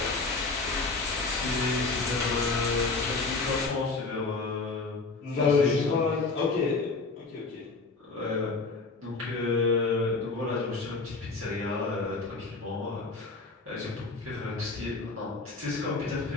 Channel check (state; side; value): quieter; right; 3.8 dB